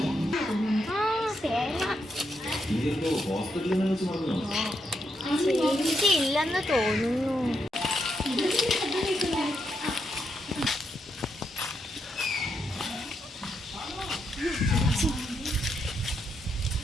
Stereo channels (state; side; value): normal; both; correlation 0.81